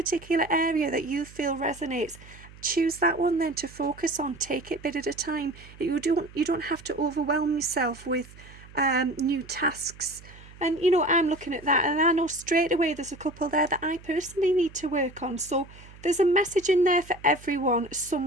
area that you feel resonates. Choose that one then to focus on. Take it bit at a time. You don't have to overwhelm yourself with new tasks. And I'm looking at that and I know straight away there's a couple there that I personally need to work on. So there's a message in there for everyone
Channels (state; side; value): noise; right; hum, 20 dB below the sound